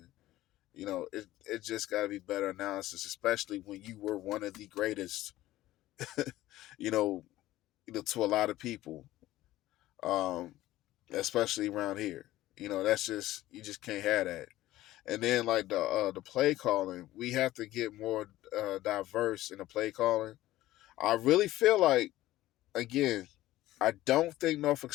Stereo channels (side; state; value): right; quieter; 15.7 dB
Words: it just got to be better analysis, especially when you were one of the greatest, you know, to a lot of people. Um, Especially around here. That's just you just can't have that. And then like the play calling, we have to get more diverse in the play calling. I really feel like again, I don't think Norfolk